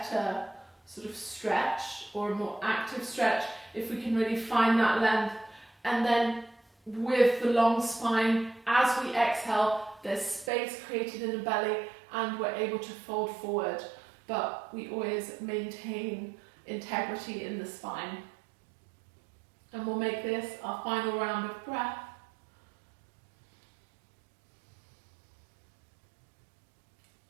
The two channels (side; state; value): left; drops out; at 10.5 s